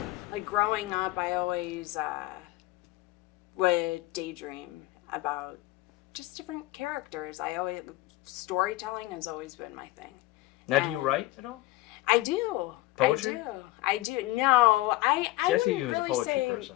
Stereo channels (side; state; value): right; quieter; 18.6 dB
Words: growing up, I always would daydream about just different characters. Storytelling has always been my thing. Now, do you write at all? I do. Poetry? I do. No, I see you wouldn't as a really poetry say person.